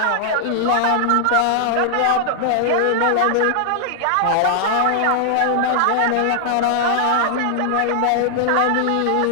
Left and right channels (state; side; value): different; both; correlation -0.01